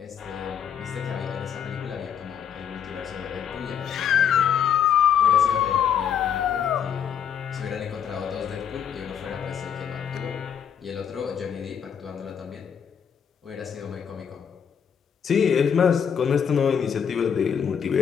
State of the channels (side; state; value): right; quieter; 8.1 dB